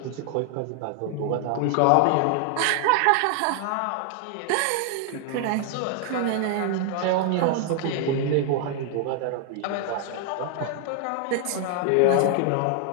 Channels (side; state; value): both; different; correlation 0.00